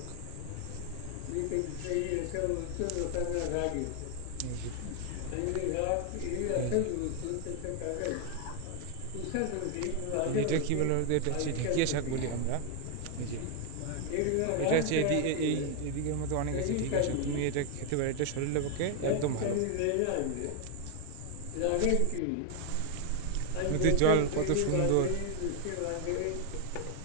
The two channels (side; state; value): both; different; correlation 0.00